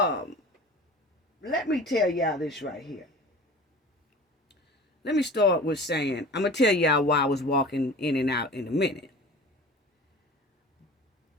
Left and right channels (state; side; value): normal; both; correlation 0.39